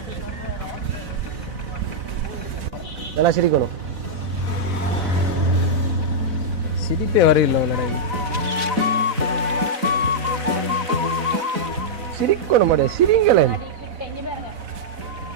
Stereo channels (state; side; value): late; left; 4.0 ms